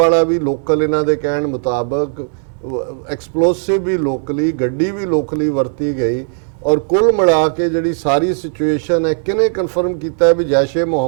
ਵੀ ਲੋਕਲ, ਇਹਨਾਂ ਦੇ ਕਹਿਣ ਮੁਤਾਬਕ ਐਕਸਪਲੋਸਿਵ ਵੀ ਲੋਕਲੀ, ਗੱਡੀ ਵੀ ਲੋਕਲੀ ਵਰਤੀ ਗਈ। ਔਰ ਕੁੱਲ ਮਿਲਾ ਕੇ ਜਿਹੜੀ ਸਾਰੀ ਸਿਚੁਏਸ਼ਨ ਹੈ, ਕਿਹਨੇ ਕਨਫਰਮ ਕੀਤਾ ਹੈ ਵੀ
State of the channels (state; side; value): silent; left; digital silence